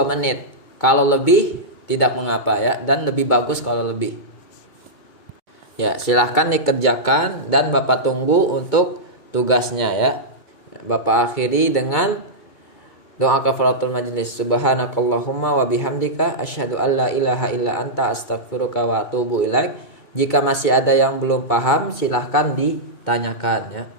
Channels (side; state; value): right; late; 2.3 ms